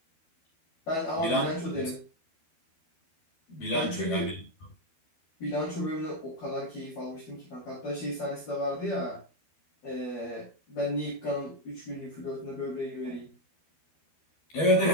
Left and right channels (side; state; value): right; late; 12 ms